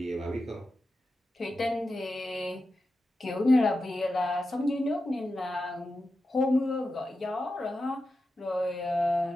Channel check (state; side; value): normal; both; correlation 0.91